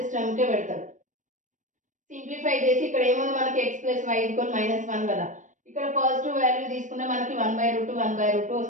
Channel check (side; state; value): left; late; 0.37 ms